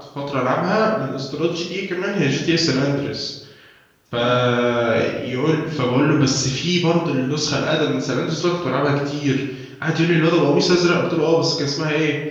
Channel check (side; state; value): both; identical; correlation 1.00